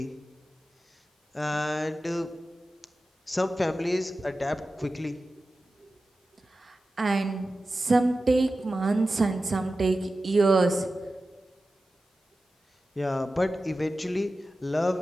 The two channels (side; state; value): both; normal; correlation 0.94